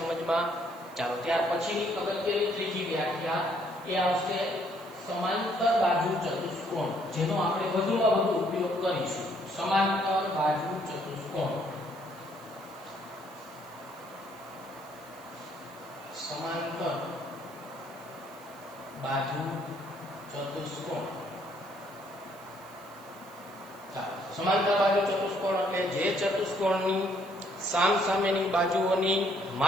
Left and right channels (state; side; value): noise; right; hiss, 24 dB below the sound